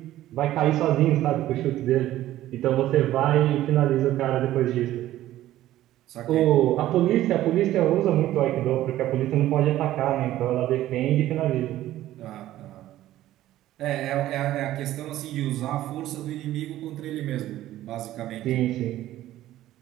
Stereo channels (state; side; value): quieter; left; 14.2 dB